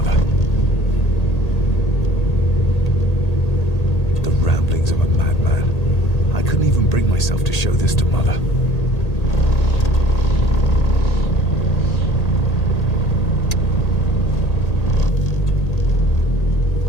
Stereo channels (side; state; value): right; late; 1.8 ms